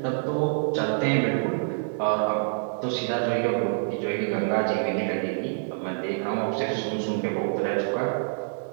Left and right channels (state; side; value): silent; left; digital silence